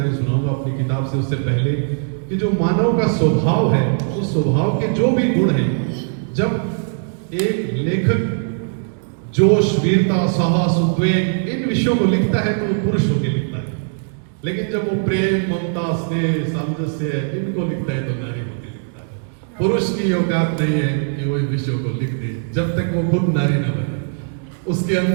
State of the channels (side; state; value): left; silent; 66 dB below the other